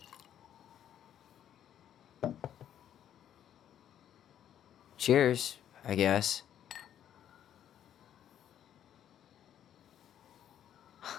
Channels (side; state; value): right; quieter; 10.3 dB